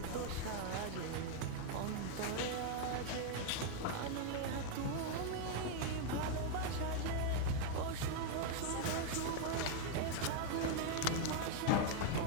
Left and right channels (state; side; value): different; both; correlation 0.00